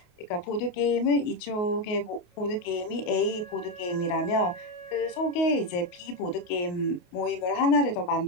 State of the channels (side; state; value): right; late; 28 ms